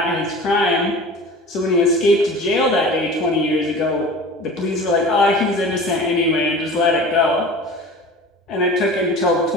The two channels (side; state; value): both; normal; correlation 0.38